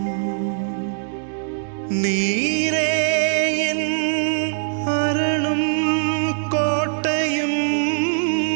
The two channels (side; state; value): left; silent; 64 dB below the other